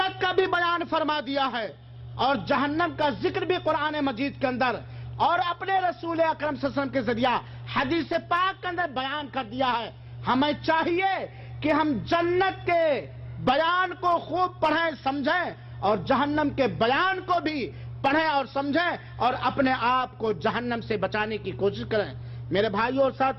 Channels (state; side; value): identical; both; correlation 1.00